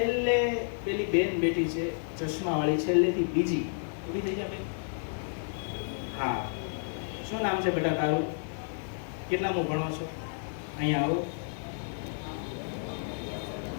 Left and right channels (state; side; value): silent; right; digital silence